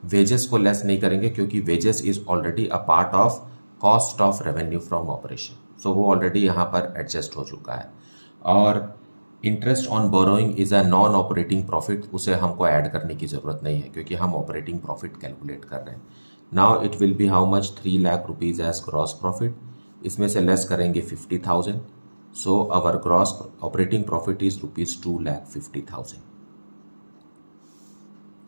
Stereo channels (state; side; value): inverted; both; correlation -1.00